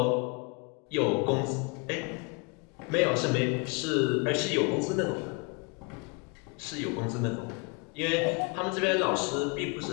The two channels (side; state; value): right; quieter; 30.6 dB